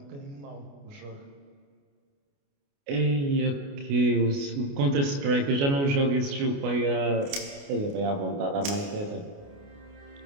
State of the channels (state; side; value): late; left; 29 ms